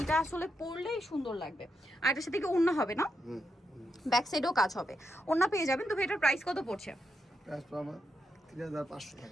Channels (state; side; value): normal; both; correlation 0.84